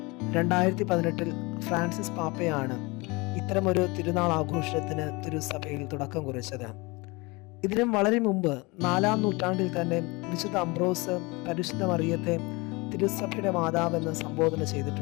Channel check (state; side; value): quieter; right; 25.5 dB